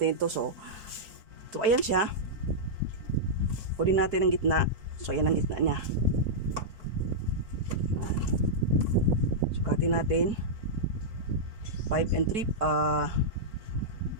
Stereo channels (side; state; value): left; late; 4.7 ms